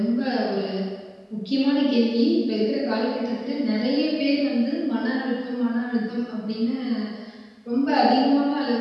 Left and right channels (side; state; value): both; identical; correlation 1.00